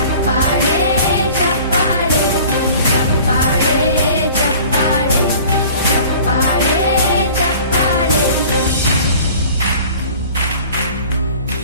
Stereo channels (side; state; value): both; inverted; correlation -0.46